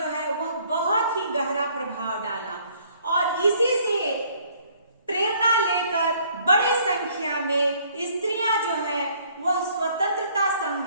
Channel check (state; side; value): inverted; both; correlation -0.61